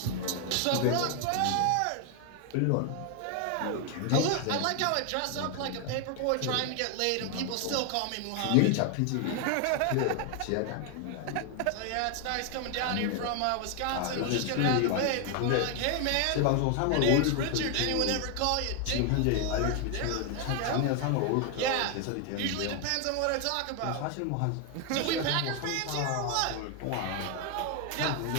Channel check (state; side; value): different; both; correlation 0.01